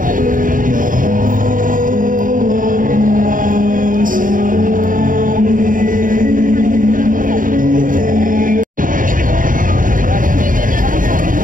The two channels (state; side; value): late; left; 0.39 ms